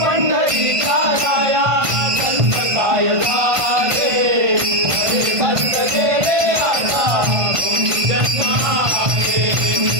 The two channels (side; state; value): left; late; 1.5 ms